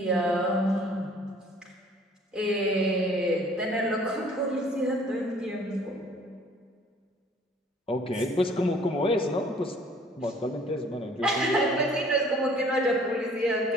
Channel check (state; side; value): normal; both; correlation 0.55